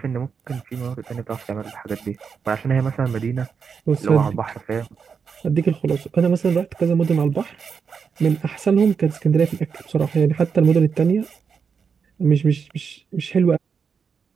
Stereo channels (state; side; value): quieter; left; 6.1 dB